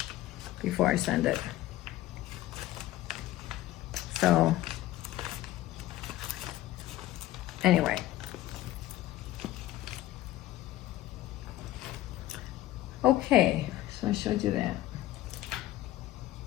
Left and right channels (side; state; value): right; quieter; 15.3 dB